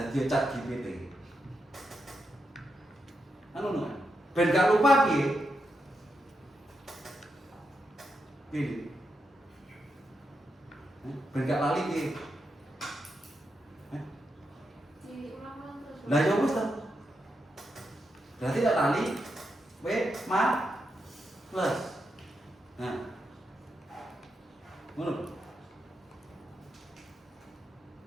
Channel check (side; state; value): both; normal; correlation 0.85